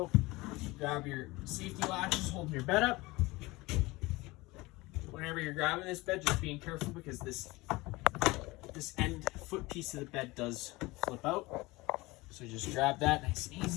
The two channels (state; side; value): quieter; right; 21.8 dB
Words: Grab your safety latches, holding your bed up. Whenever you're grabbing this bed, just being careful because this end foot piece of the bed does flip out. So just grab that nice and